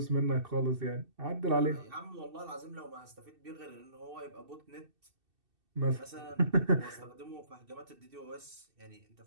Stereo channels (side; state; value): left; late; 2.6 ms